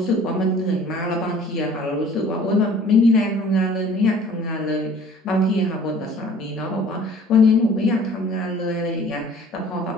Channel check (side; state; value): both; normal; correlation 0.50